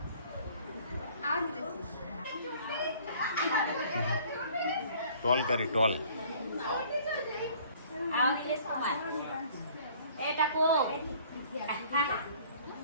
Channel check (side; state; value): both; inverted; correlation -0.54